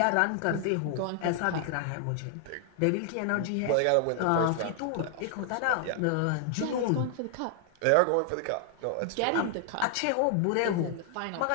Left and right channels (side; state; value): both; different; correlation 0.00